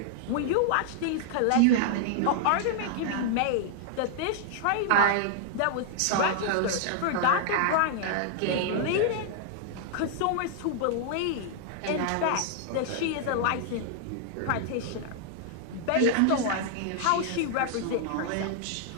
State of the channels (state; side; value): different; both; correlation -0.01